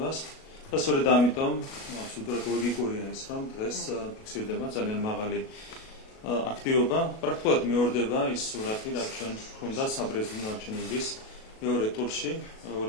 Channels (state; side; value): late; right; 37 ms